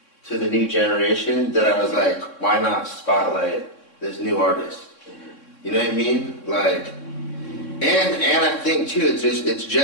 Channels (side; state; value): right; late; 3.6 ms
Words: to the new generation that I was like, why not spotlight this new artist? You know what I mean? Like, and I think too, it's